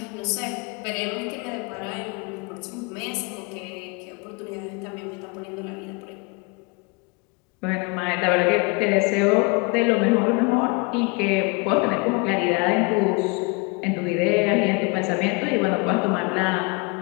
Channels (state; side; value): quieter; right; 29.7 dB